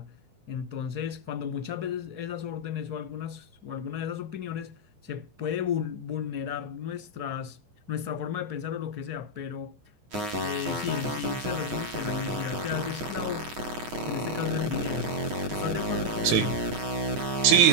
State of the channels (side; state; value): left; late; 9.5 ms